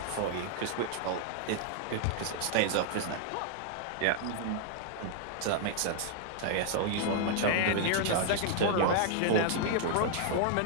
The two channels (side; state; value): both; different; correlation 0.00